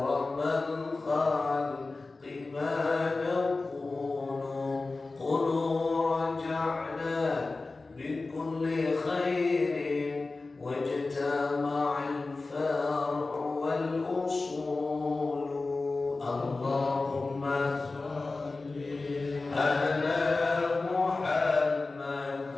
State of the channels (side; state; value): right; quieter; 3.5 dB